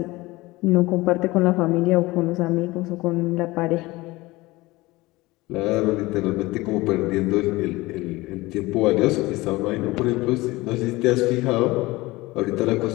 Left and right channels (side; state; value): right; quieter; 20.5 dB